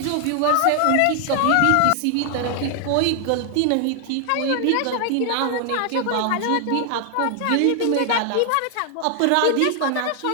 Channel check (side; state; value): both; different; correlation 0.00